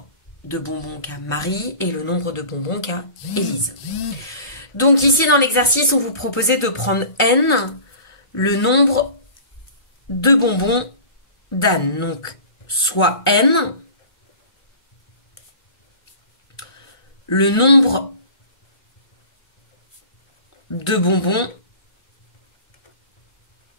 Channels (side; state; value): right; late; 1.3 ms